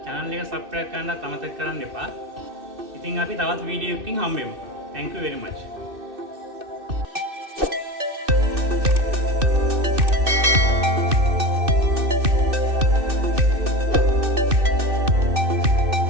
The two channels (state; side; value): late; left; 2.6 ms